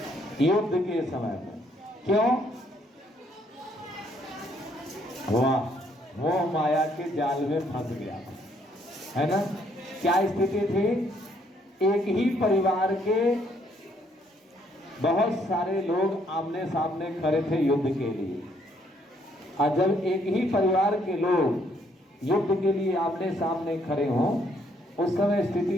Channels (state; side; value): normal; both; correlation 0.69